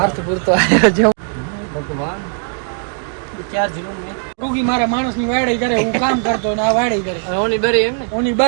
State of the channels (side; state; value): left; silent; 57 dB below the other